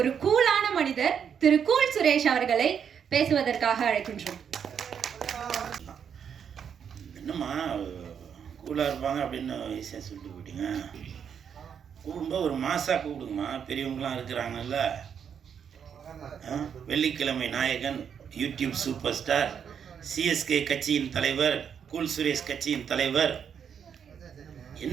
கூலான மனிதர் திரு கூல் சுரேஷ் அவர்களை பேசுவதற்காக அழைக்கின்றோம். என்னம்மா கூலாக இருப்பாங்க அப்படின்னு ஈஸியாக சொல்லிட்டு போயிட்டீங்க. கூடும்போது ஒரு மாசாக கூப்பிடுங்கம்மா, பெரியவங்களாம் இருக்கிறாங்கல்ல. வெள்ளிக்கிழமை நாயகன், யூடியூப் சூப்பர் ஸ்டார், சிஎஸ்கே கட்சியின் தலைவர், கூல் சுரேஷ் கட்சியின் தலைவர்.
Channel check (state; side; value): quieter; left; 7.7 dB